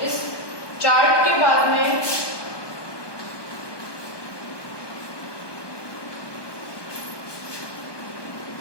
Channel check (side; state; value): right; late; 1.2 ms